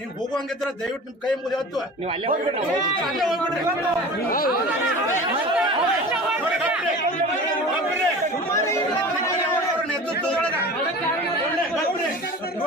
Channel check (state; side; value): normal; both; correlation 0.37